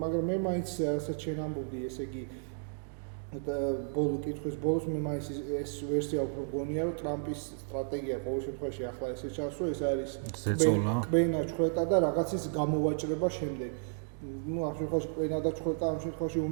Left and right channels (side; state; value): left; silent; digital silence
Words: მე მაინც რასაც შენ ამბობდი, ესე იგი კითხვის ბოლოს მე მაინც ეს ვერსია უფრო მგონია, რომ ტრამპის სტრატეგია ყოველ შემთხვევაში ახლა ესე ჩანს, რომ ეს არის კბენა ჩხვეტა და რაღაცის გამოვაჭრება შემდეგ. ну ამ შემთხვევაში კბენა და ჩხვეტა ამ შემთხვევაში